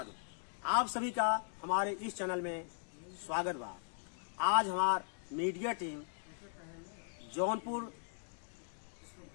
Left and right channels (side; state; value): right; silent; digital silence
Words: आप सभी का हमारे इस चैनल में स्वागत बा। आज हमार मीडिया टीम जौनपुर